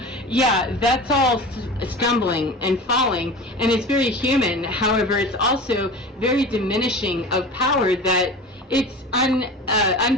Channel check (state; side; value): normal; both; correlation 0.34